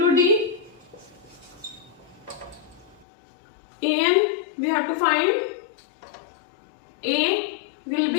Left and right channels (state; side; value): drops out; right; at 3.1 s